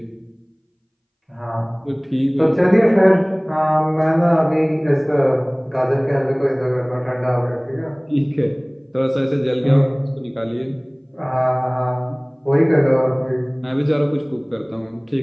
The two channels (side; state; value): both; identical; correlation 1.00